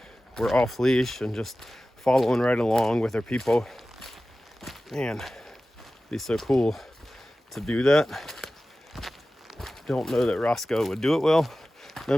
were off leash and just following right along with their people. Man, it'd be so cool to do that. Don't know that Roscoe would do it well.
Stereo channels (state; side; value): normal; both; correlation 0.96